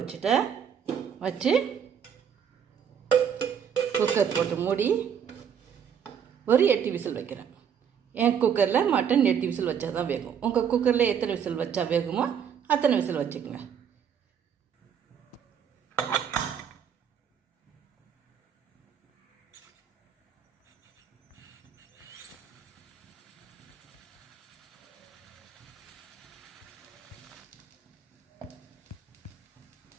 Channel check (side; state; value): left; quieter; 8.0 dB